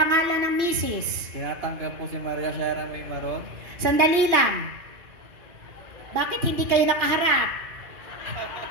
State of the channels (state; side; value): late; left; 2.5 ms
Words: ng misis. Tinatanggap po si Maria Sierra May Maron. Sandali lang. Bakit hindi kayo nakaharap?